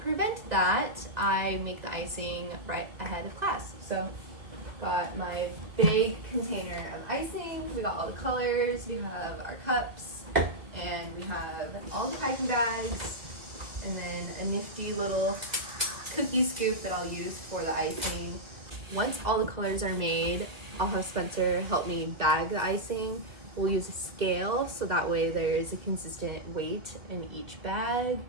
that, I make the icing right ahead of class. So got my big container of icing, we got all the colors, we have our cups, and we have all the piping bags, and then a nifty little cookie scoop that I'll use for the icing. Once all the colors are made, I'll have Spencer help me bag the icing. We'll use a scale so that way there's a consistent weight in each bag.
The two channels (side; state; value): left; late; 1.8 ms